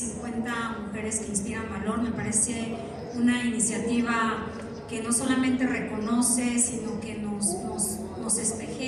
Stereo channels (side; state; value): both; identical; correlation 1.00